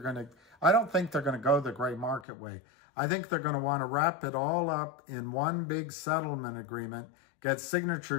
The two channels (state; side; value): drops out; right; at 2.2 s